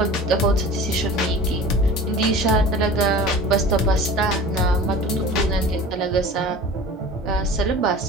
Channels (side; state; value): both; normal; correlation 0.39